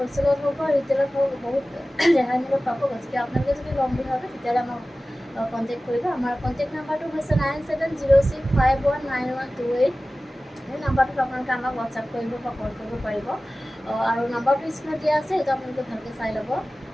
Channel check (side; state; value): both; normal; correlation 0.96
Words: হওক বা ৰিটেইলত হওক বহুত ৰেহাই মূল্যত পাব। গতিকে আপোনালোকে যদি ল'ম বুলি ভাবে তেতিয়াহ'লে আমাক কণ্টেক্ট কৰিব। আমাৰ কণ্টেক্ট নাম্বাৰটো হৈছে 9706519128। সেই নাম্বাৰটোত আপোনালোকে আমাক হোৱাটছআপ কৰিব বা কল কৰিব পাৰিব। আৰু নাম্বাৰটো স্ক্ৰীণত দিয়া আছে, সেইটো আপোনালোকে ভালকৈ চাই ল'ব।